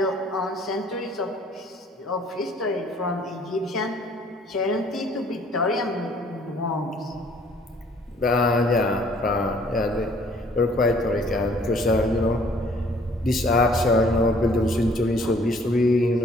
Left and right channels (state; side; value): normal; both; correlation 0.58